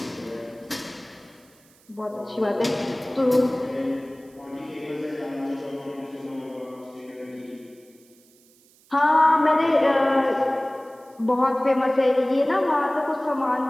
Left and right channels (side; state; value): right; noise; hiss, 30 dB below the sound